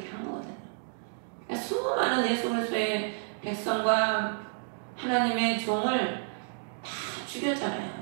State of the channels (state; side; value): silent; left; digital silence